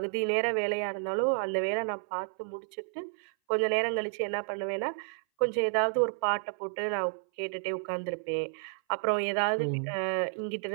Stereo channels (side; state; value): left; silent; 57 dB below the other